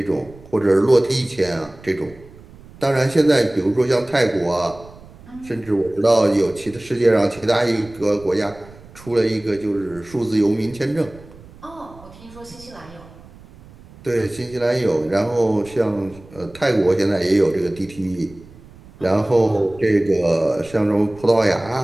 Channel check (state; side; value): noise; right; rumble, 22 dB below the sound